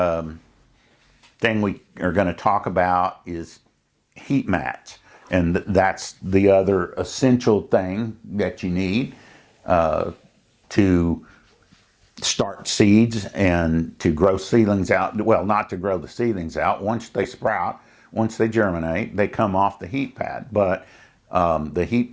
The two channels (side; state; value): both; identical; correlation 1.00